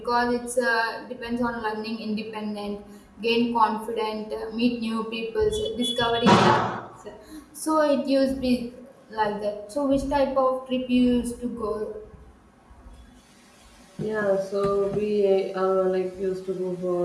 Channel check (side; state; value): both; identical; correlation 1.00